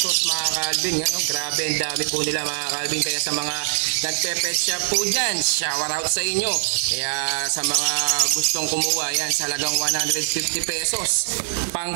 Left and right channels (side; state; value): left; silent; digital silence